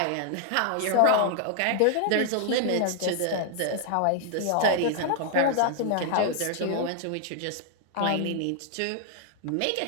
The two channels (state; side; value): different; both; correlation 0.00